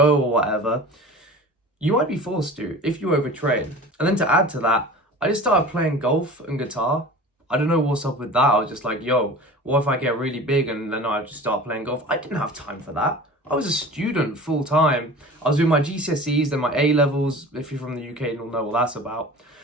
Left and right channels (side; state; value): both; normal; correlation 0.38